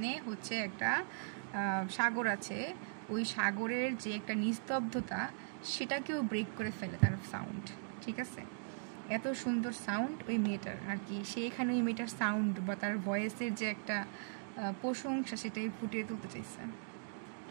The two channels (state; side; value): silent; left; digital silence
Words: হচ্ছে একটা সাগর আছে। ওই সাগরের যে একটা নিস্তব্ধতা সেটাকেও ব্রেক করে ফেলে তার সাউন্ড, ঠিক আছে। এত সুন্দর সাউন্ড ওই মেয়েটার আর কি, সে এখানে ওই মেয়েটার সাউন্ড বা তার ভয়েসের যে একটা প্রশংসা সেটাই ফুটিয়ে তুলতে চাইছে।